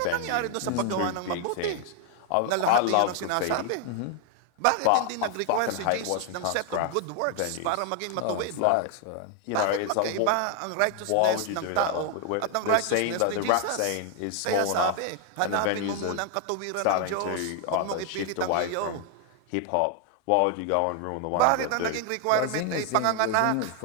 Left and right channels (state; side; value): different; both; correlation 0.00